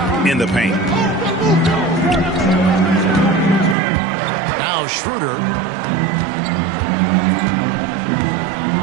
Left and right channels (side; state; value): left; drops out; at 3.8 s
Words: in the paint. Now Schroeder.